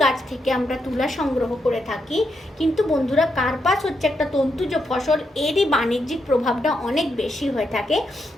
গাছ থেকে আমরা তুলা সংগ্রহ করে থাকি, কিন্তু বন্ধুরা কার্পাস হচ্ছে একটা তন্তুজ ফসল, এরই বাণিজ্যিক প্রভাবটা অনেক বেশি হয়ে থাকে।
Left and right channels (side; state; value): both; normal; correlation 0.81